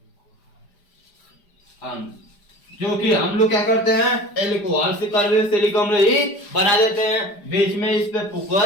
हम जो कि हम लोग क्या करते हैं, एल्कोहल से कार्बोक्सिलिक अम्ल ही बना देते हैं। बीच में इस पे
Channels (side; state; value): right; late; 5.0 ms